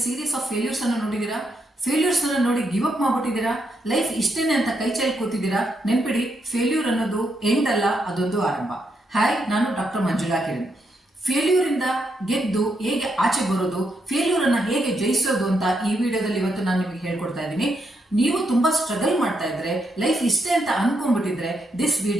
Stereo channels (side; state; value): both; normal; correlation 0.80